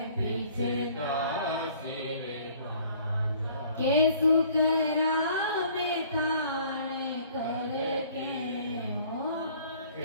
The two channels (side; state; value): both; inverted; correlation -0.55